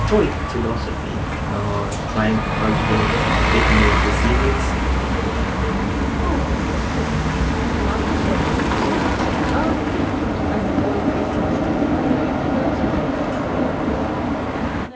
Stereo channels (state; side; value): identical; both; correlation 1.00